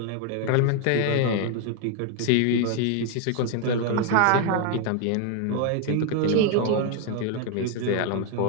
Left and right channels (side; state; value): both; different; correlation 0.01